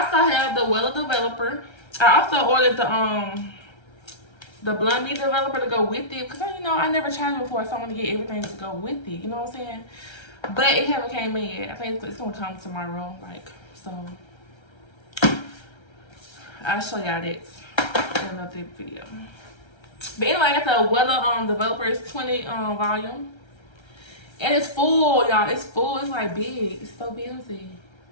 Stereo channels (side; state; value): right; late; 1.3 ms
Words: also have the Wella Developer. I also ordered the Blonde Me Developer to go with it, because you know I never tried it before, so I want to get everything to go with it. You know what I'm saying? But it haven't came in yet. I think it's gonna come tomorrow. Like, so I'll show y'all that in another video. But anyway, I got the Wella Developer. It's 20 volume, and it's full, y'all. It's full. It's like big. It's so busy.